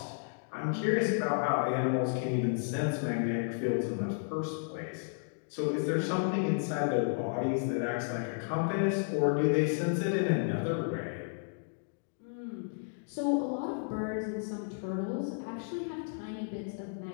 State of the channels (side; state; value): right; silent; digital silence